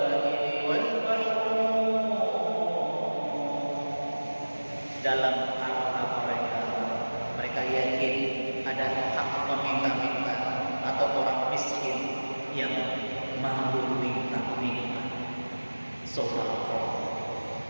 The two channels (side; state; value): both; inverted; correlation -1.00